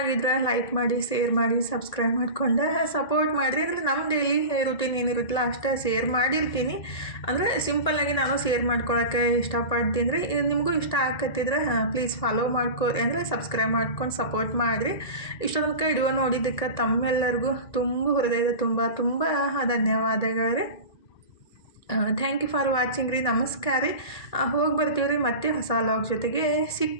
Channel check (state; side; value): late; right; 1.8 ms